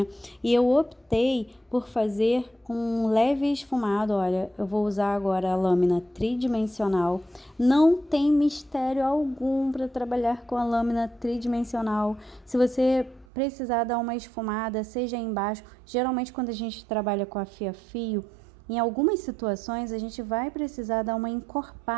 e eu optei por fazer um leve esfumado. Olha, eu vou usar agora a lâmina tridimensional. Não tem mistério algum para trabalhar com a lâmina tridimensional. Se você precisar dar uma esfumada, seja embaixo, geralmente quando a gente trabalha com a fia-fio, em algumas situações a gente vai precisar dar uma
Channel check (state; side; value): drops out; left; at 13.2 s